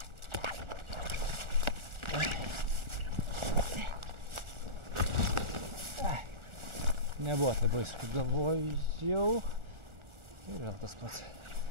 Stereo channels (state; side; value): late; left; 1.4 ms